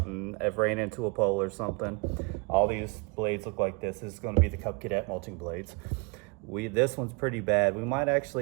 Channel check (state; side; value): quieter; left; 30.1 dB